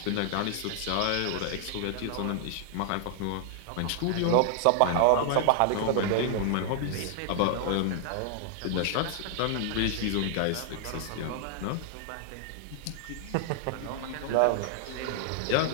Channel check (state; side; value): different; both; correlation 0.00